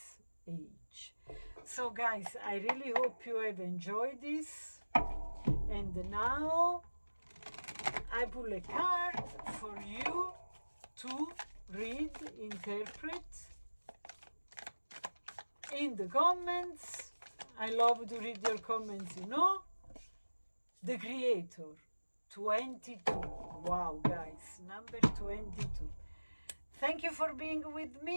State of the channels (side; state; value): both; inverted; correlation -1.00